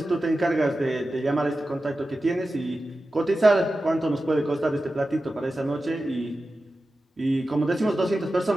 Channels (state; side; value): normal; both; correlation 0.93